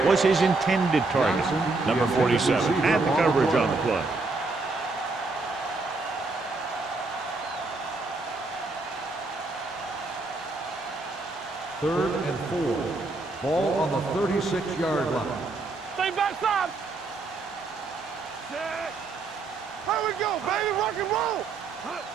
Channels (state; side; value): quieter; left; 3.6 dB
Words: was his intended target. Number 47 had the coverage on the play. Third and 4. Ball on the 36-yard line. Stay backside. Here we go, baby. Rock and roll.